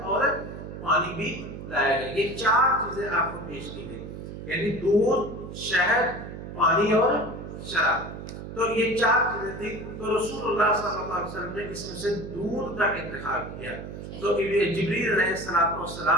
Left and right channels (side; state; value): right; noise; hum, 10 dB below the sound